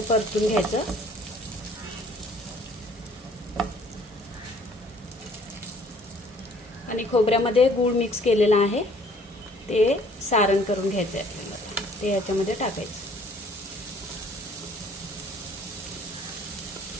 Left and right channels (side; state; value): both; normal; correlation 0.57